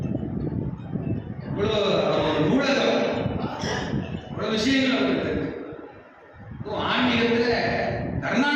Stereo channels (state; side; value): identical; both; correlation 1.00